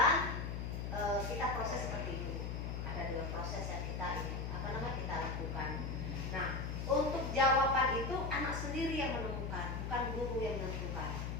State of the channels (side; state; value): left; noise; hum, 3 dB below the sound